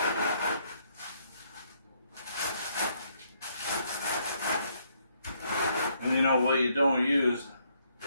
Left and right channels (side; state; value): both; inverted; correlation -0.71